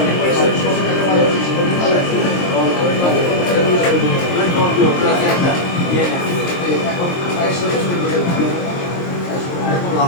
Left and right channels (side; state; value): right; late; 23 ms